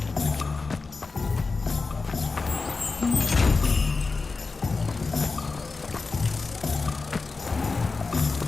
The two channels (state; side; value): quieter; right; 4.1 dB